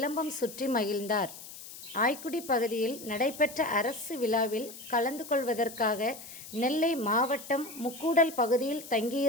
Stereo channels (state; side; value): noise; left; hiss, 14 dB below the sound